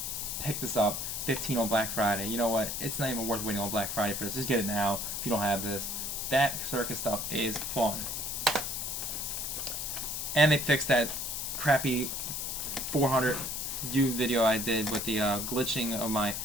Pick this up. 15 on Black Friday. You know what? It's not even worth waiting on Black Friday for this. Just get it now if you don't have this. That circus stuff is fun. And they fixed that crappy 400 view video I did with the glitching of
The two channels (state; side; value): noise; left; hiss, 3 dB below the sound